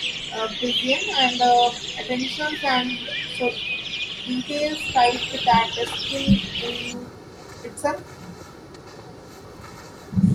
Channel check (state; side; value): identical; both; correlation 1.00